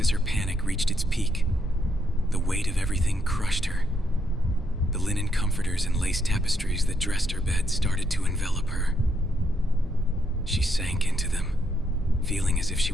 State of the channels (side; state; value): both; normal; correlation 0.76